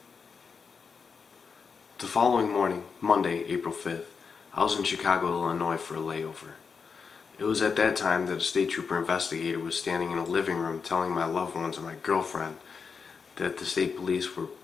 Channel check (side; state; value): right; quieter; 5.6 dB